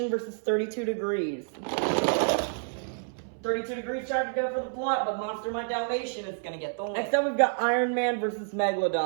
versus 32 Degrees. 32 Degrees tried to go for the block, but Monster Mutt Dalmatian is going to get the win. Next up, we've got Iron Man versus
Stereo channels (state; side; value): silent; left; 59 dB below the other